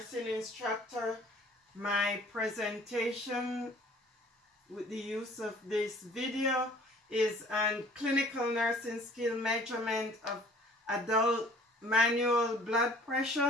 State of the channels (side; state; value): both; normal; correlation 0.52